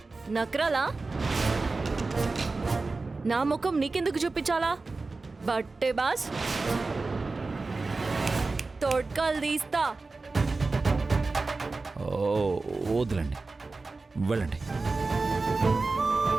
నక్రాలా? నా ముఖం నీకెందుకు చూపించాలా? బట్టే బాస్, తోడ్కాలు తీస్తా. వద్దులండి, వెళ్ళండి.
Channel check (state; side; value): quieter; left; 3.7 dB